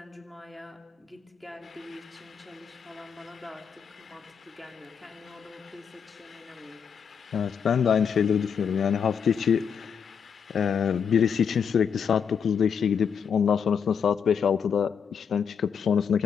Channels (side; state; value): right; quieter; 7.0 dB